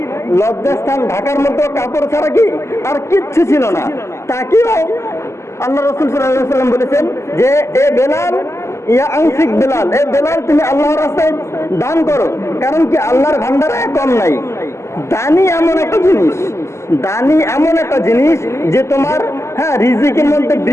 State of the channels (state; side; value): late; right; 0.13 ms